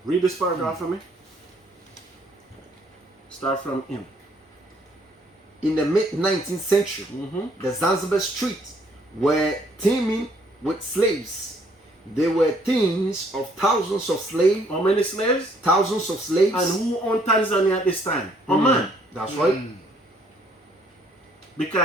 Read this paragraph for me. Start from him. In the mid-19th century, the Zanzibar streets were teeming with slaves. There were teams of thousands of slaves. How many slaves? Thousands of slaves. And who owned Tanzania at this time? Oman. That's right.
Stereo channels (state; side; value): normal; both; correlation 0.65